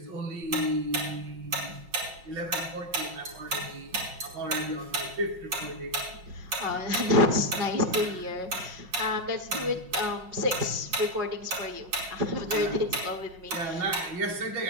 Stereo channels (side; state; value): left; late; 5.5 ms